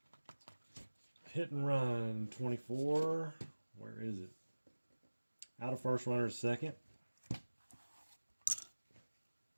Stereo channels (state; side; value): inverted; both; correlation -1.00